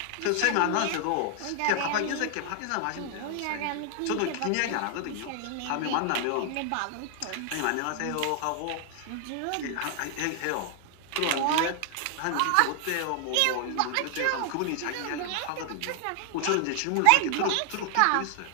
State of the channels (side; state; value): both; different; correlation 0.00